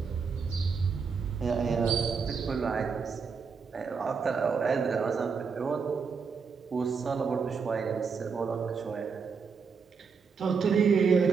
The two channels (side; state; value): left; quieter; 5.6 dB